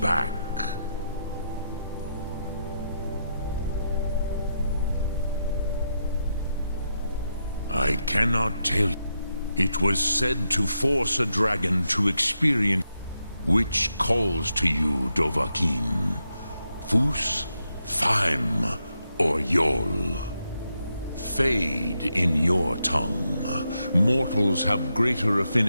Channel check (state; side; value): inverted; both; correlation -0.83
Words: I cannot tell you. It was said to force a dragon to experience. Which calls to you, Dovahkiin? Fus, Faim, or Yol? Fade in your tongue. Mortals have greater